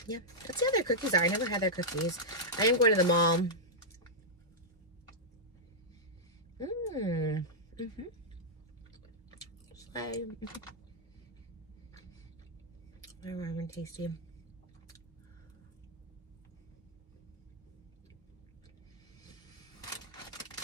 Yeah, let's see how their cookies are. I never had their cookies. I am going to the mall. They're warm and tasty.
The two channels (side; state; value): both; normal; correlation -0.08